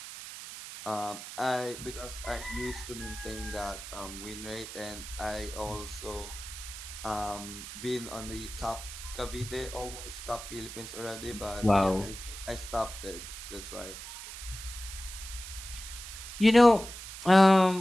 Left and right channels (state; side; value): noise; right; hiss, 11 dB below the sound